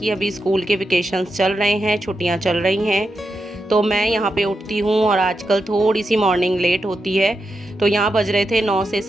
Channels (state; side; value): normal; both; correlation 0.87